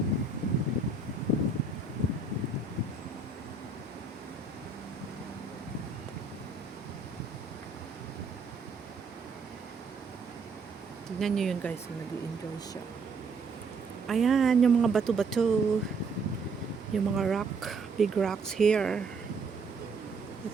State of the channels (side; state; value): left; quieter; 4.0 dB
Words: Tignan nyo yun guys, nag-i-enjoy siya. Ayan, yung mga bato-bato. Yung mga rock, big rocks here. You